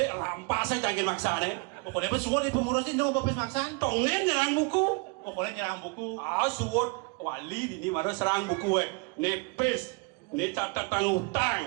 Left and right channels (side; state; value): left; quieter; 31.1 dB